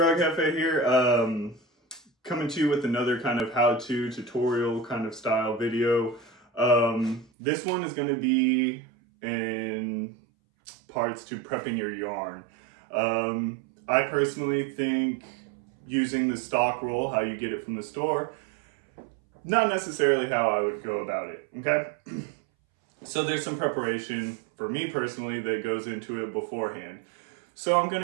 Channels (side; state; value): left; drops out; at 7.3 s